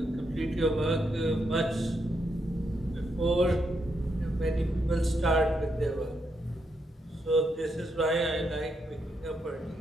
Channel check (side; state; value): both; normal; correlation 0.80